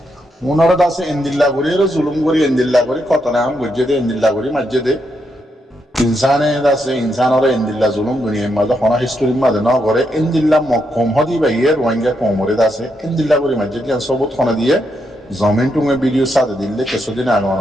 unor dase indilla gori ro zulum gori indilla gori kotona am gujje de indilla gori majje de insane dase insanore indilla zulum duniya mazda hona history mazda na gore indilla mokkom hodi ba yer Rohingya kum ore dase indilla gori majje diyan sobut khona diye zamin tunge video sade dille kesu din agona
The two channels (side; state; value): both; normal; correlation 0.80